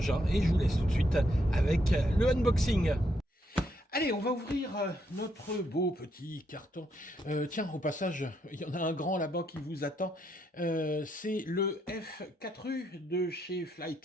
et je vous laisse tout de suite avec le unboxing. Allez, on va ouvrir notre beau petit carton. Tiens, au passage, il y en a un grand là-bas qui vous attend. C'est le F4U de chez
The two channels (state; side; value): normal; both; correlation 0.76